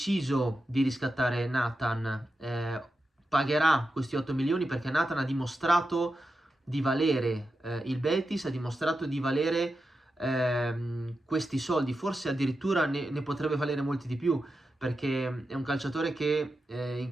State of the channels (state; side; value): normal; both; correlation 0.89